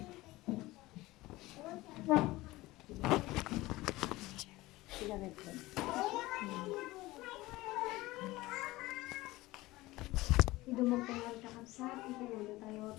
Dumagtangan ka kapsat, itulo tayo,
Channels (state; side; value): quieter; right; 19.1 dB